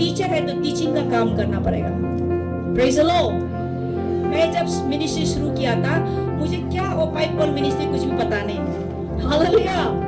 है तो टीचिंग का काम करना पड़ेगा। Praise the Lord. मैं जब मिनिस्ट्री शुरू किया था, मुझे क्या वो पाइपल मिनिस्ट्री कुछ भी पता नहीं। हालेलुया।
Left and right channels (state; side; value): identical; both; correlation 1.00